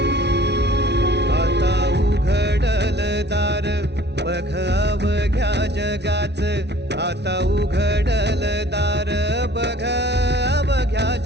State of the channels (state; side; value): late; left; 0.50 ms